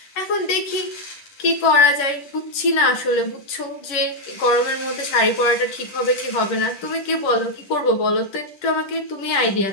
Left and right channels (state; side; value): late; right; 10 ms